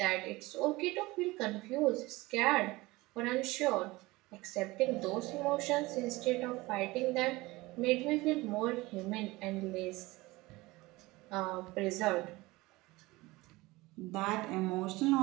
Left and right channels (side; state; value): left; quieter; 20.9 dB